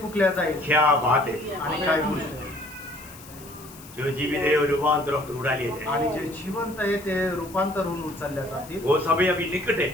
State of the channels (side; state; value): left; noise; hiss, 19 dB below the sound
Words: फुकल्या जाईल. क्या बात है, आणि काय गोष्ट आहे. जो जीवित है वो रूपांतर होकर उड़ा लिए जाए। आणि जे जिवंत आहे ते रूपांतर होऊन उचलल्या जातील वो समय अभी निकट है।